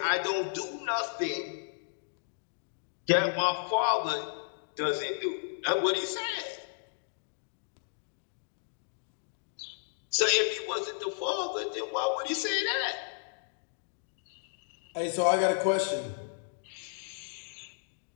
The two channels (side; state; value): right; silent; digital silence